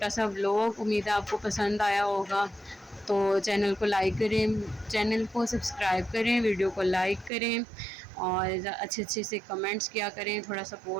सा व्लॉग, उम्मीद है आपको पसंद आया होगा। तो चैनल को लाइक करें, चैनल को सब्सक्राइब करें, वीडियो को लाइक करें और अच्छे से कमेंट्स किया करें, थोड़ा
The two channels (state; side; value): drops out; left; at 7.3 s